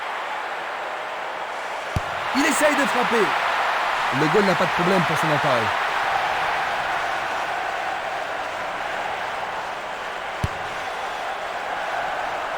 Il essaye de frapper. Le goal n'a pas de problème pour son appareil.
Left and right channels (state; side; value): identical; both; correlation 1.00